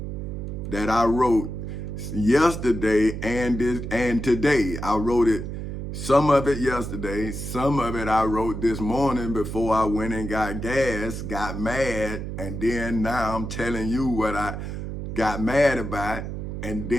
that I wrote yesterday and today. I wrote it, some of it yesterday, some of it I wrote this morning before I went and got gas, got mad, and then now I'm telling you what I got mad about, and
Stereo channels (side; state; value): right; noise; hum, 6 dB below the sound